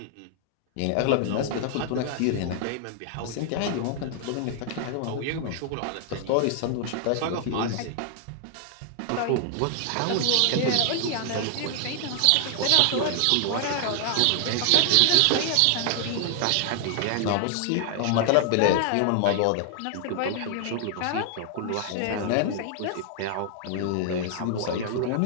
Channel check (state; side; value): different; both; correlation 0.00